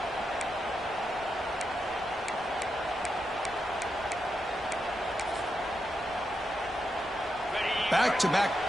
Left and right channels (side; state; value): left; noise; rumble, 25 dB below the sound